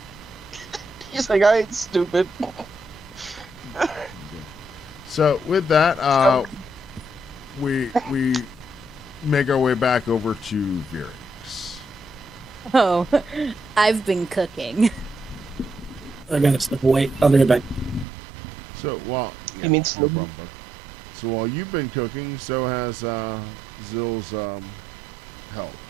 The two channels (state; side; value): drops out; left; at 18.1 s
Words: He's like, I ain't stupid. So with that, we make our way back over to Virix. Oh, I've been cooking. I gotta step away. I'll be right back. So You mean no problem, bud. So while you've been cooking, so has Zill's help,